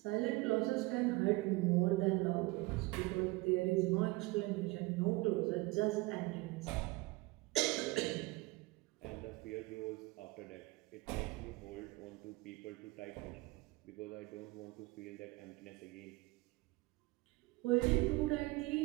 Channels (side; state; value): left; quieter; 22.7 dB